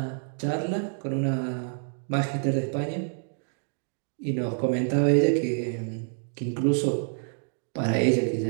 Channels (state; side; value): silent; left; digital silence